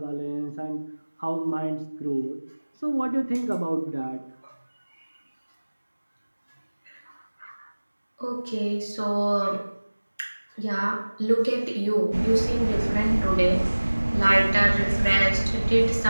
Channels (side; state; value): both; inverted; correlation -1.00